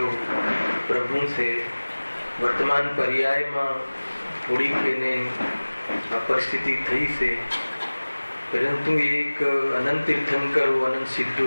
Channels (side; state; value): both; inverted; correlation -1.00